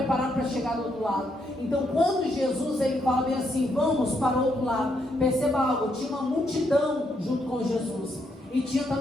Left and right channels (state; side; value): normal; both; correlation 0.76